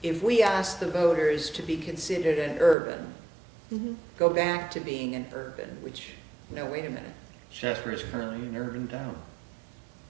if we asked the voters to be considered an urban, go back to being an urban, which, no, wait a minute. Shaftsbury is currently an urban town.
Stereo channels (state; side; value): drops out; left; at 2.8 s